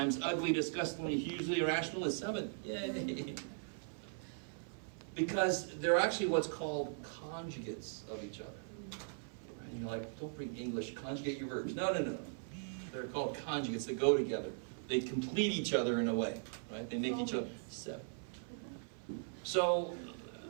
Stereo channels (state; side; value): silent; left; 52 dB below the other